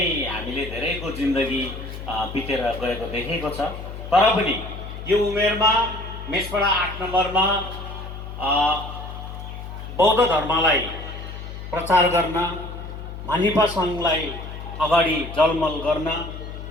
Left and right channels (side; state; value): left; noise; hum, 10 dB below the sound